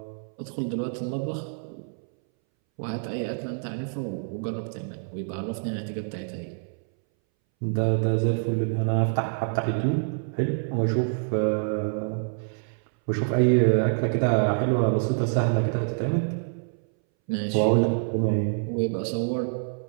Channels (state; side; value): silent; left; 61 dB below the other